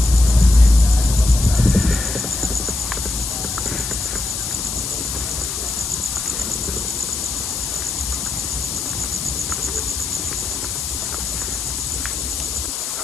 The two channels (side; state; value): left; noise; hiss, 4 dB below the sound